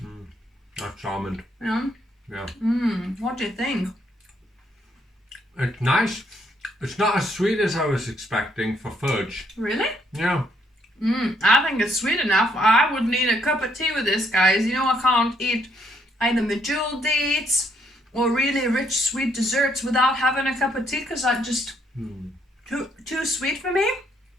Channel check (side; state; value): both; normal; correlation 0.71